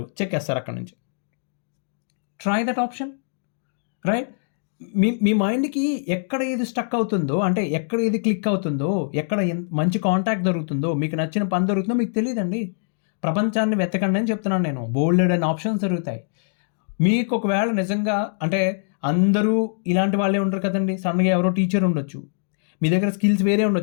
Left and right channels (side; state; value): right; silent; digital silence